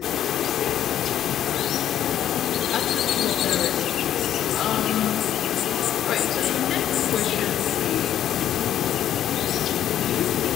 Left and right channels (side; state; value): right; quieter; 11.0 dB